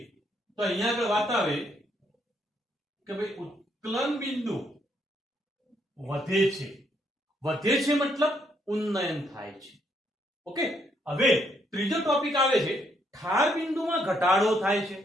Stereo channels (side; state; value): both; normal; correlation 0.73